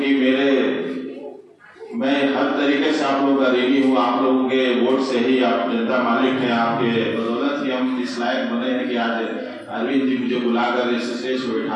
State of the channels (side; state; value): both; identical; correlation 1.00